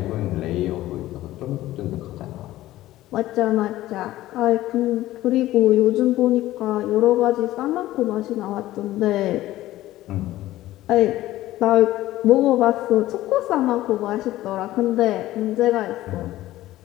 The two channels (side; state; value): right; quieter; 15.5 dB